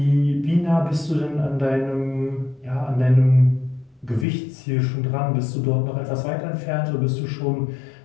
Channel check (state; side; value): drops out; right; at 4.2 s